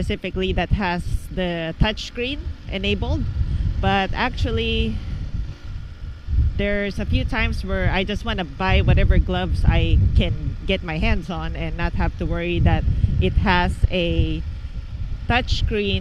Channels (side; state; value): both; identical; correlation 1.00